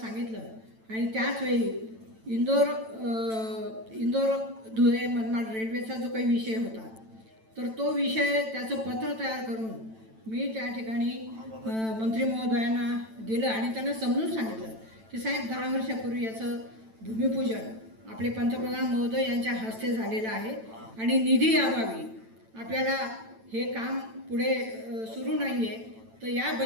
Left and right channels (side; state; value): left; late; 9.0 ms